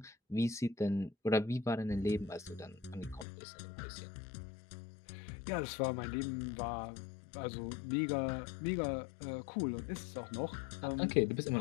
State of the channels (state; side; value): drops out; right; at 3.2 s